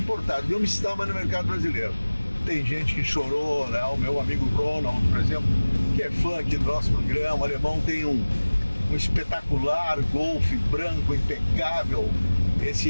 não estava no mercado brasileiro. Tem gente que chorou, né? O meu amigo Ronald, por exemplo, que é fã aqui do nosso programa, o alemão tem um espetacular Golf branco, impecável, esse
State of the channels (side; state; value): both; inverted; correlation -1.00